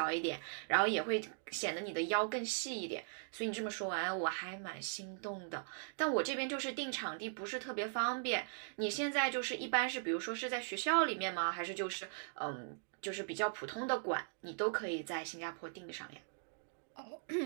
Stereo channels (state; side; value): silent; left; digital silence